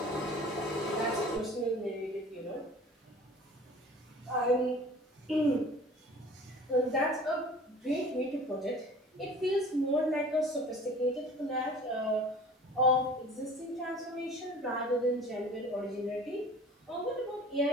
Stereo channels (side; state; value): both; normal; correlation 0.45